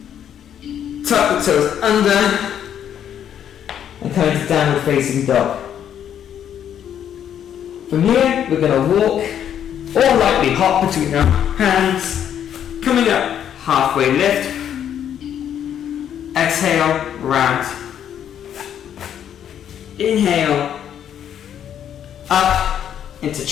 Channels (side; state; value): right; quieter; 9.5 dB